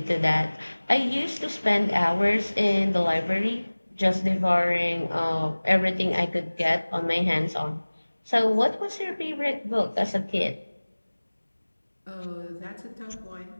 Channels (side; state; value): both; inverted; correlation -1.00